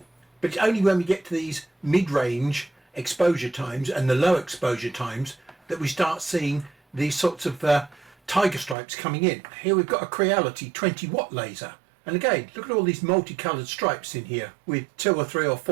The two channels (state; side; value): drops out; left; at 8.8 s